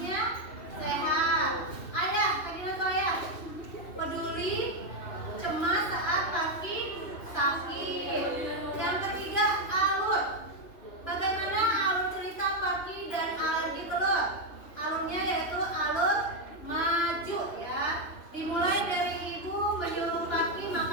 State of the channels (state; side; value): late; right; 2.9 ms